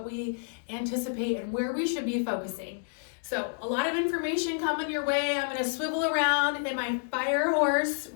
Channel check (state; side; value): silent; right; 58 dB below the other